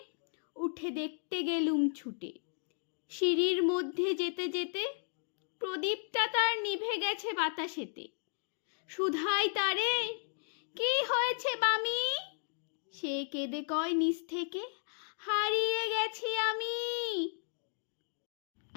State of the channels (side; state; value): right; silent; digital silence